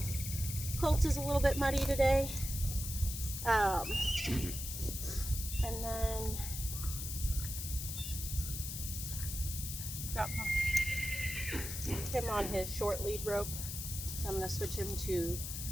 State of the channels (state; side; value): noise; left; hiss, 6 dB below the sound